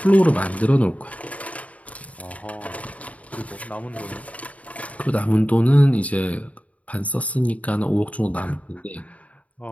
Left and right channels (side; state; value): right; late; 0.068 ms